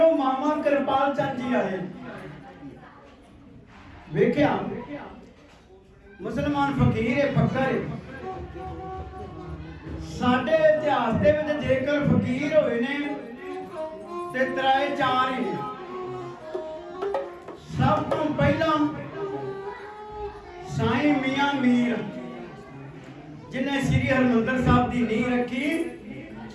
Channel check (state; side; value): identical; both; correlation 1.00